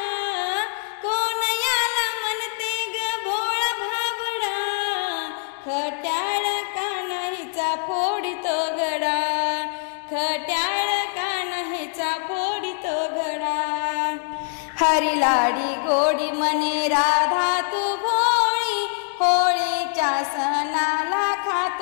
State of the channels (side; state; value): right; silent; digital silence